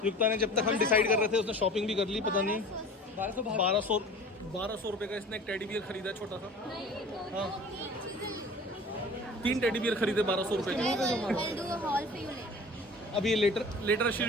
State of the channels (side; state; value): both; normal; correlation 0.41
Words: युक्ता ने जब तक हम डिसाइड कर रहे थे उसने शॉपिंग भी कर ली, पता नहीं 1200 रुपए का इसने एक टेडी बियर खरीदा है छोटा सा। नहीं दो हाँ। तीन चीजें 3 टेडी बियर खरीदे 1200 रुपए के। I'll do a haul for you later. अब ये later